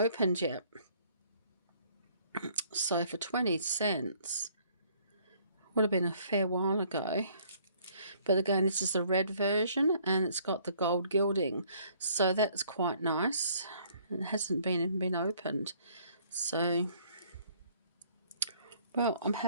yet. So for 20 cents, would have been a fair while ago. But again, this is the red version, and it's got the gold gilding, so that's quite nice. It hasn't even been opened, so well, I'm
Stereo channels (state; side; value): inverted; both; correlation -0.61